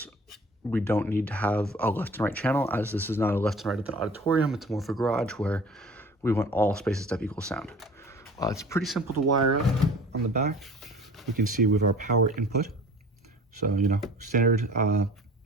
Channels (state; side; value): normal; both; correlation 0.45